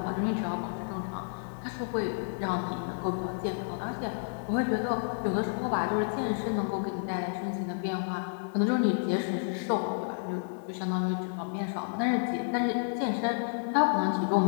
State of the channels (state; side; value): silent; right; digital silence